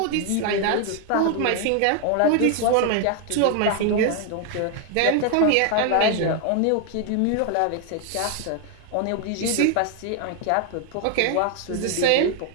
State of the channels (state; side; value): different; both; correlation 0.00